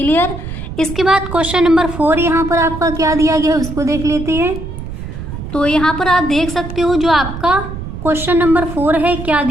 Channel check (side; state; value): right; noise; rumble, 8 dB below the sound